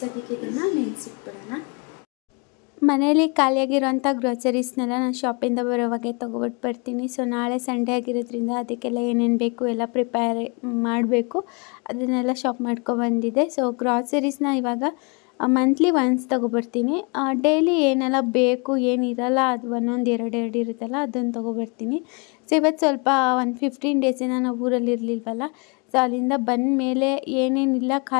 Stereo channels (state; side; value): quieter; right; 33.0 dB